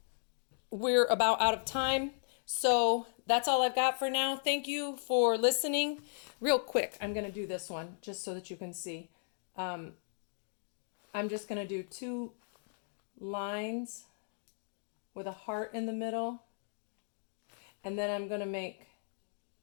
We're about out of time. So that's all I've got for now. Thank you for listening. Real quick, I'm going to do this one just so that you can see. I'm just going to do 2 lines with a heart in the middle. And then I'm going to make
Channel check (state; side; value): silent; right; digital silence